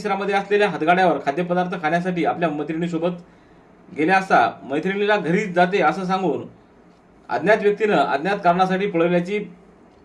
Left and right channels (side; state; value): both; identical; correlation 1.00